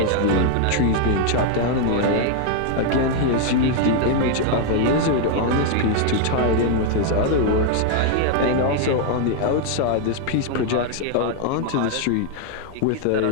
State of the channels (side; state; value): both; different; correlation 0.00